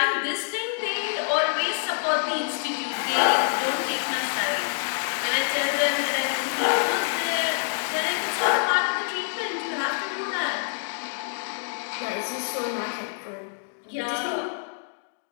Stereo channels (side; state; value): right; silent; digital silence